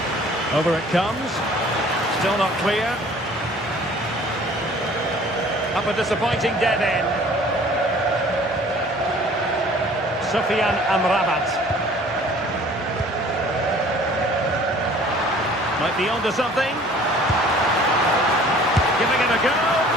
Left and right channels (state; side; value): normal; both; correlation 0.51